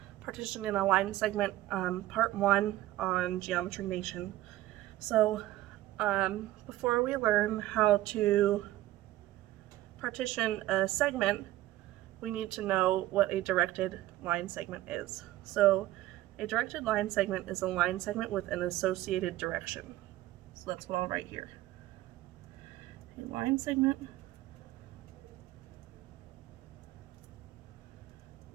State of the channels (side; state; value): left; quieter; 15.7 dB